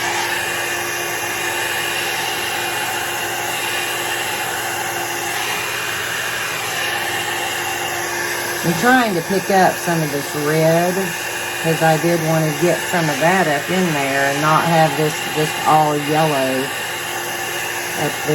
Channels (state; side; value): identical; both; correlation 1.00